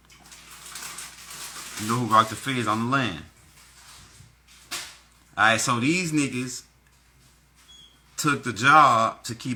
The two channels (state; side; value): identical; both; correlation 1.00